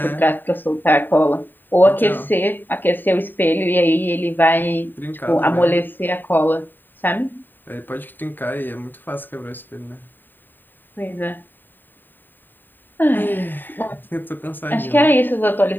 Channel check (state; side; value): late; right; 0.092 ms